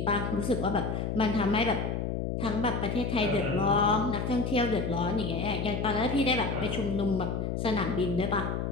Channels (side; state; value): left; noise; hum, 2 dB below the sound